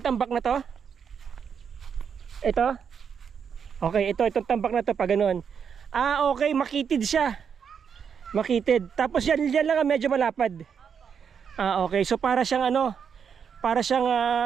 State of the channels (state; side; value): quieter; left; 7.1 dB